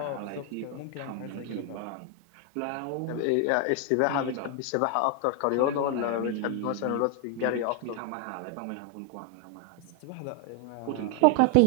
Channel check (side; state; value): both; different; correlation 0.00